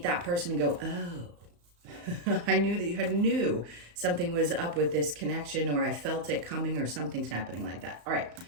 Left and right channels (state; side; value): late; left; 35 ms